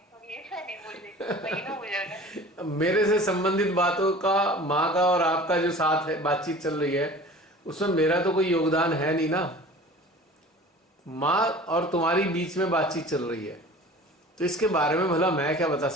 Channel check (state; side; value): normal; both; correlation 0.42